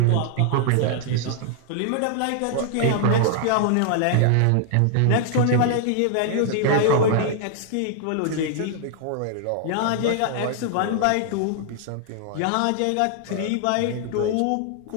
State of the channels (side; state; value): both; different; correlation 0.00